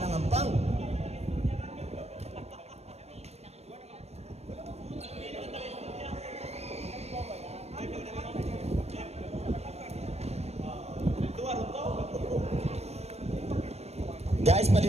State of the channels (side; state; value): left; late; 0.31 ms